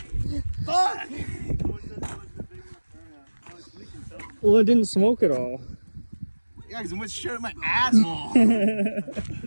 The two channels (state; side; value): inverted; both; correlation -1.00